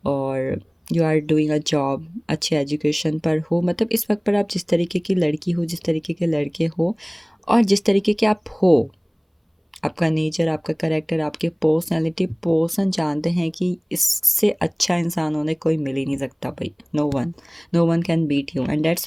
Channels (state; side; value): identical; both; correlation 1.00